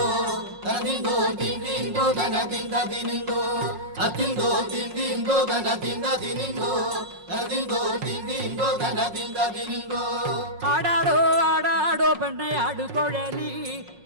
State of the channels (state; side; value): late; left; 5.6 ms